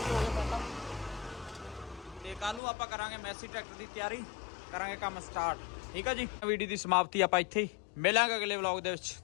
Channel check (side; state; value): right; drops out; at 2.6 s